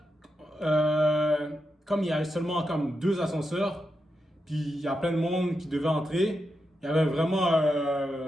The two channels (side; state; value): both; normal; correlation 0.86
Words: comme il y avait seulement comme 2 ascenseurs, puis il y a plein de monde qui devait entrer, il y avait vraiment.